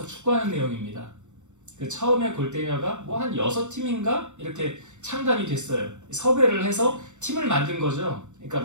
축구하는 내용입니다. 그 처음에 골대녀가 뭐 한 6팀인가 이렇게 창단이 됐어요. 섭외를 해서 팀을 만든 거죠. 그러니까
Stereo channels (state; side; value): late; left; 0.84 ms